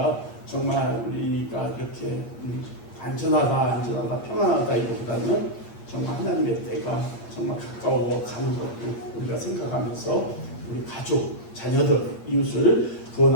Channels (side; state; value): right; late; 8.6 ms